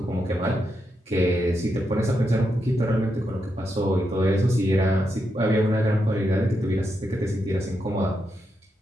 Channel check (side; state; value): both; normal; correlation 0.84